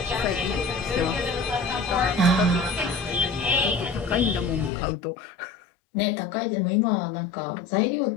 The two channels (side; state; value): right; drops out; at 4.7 s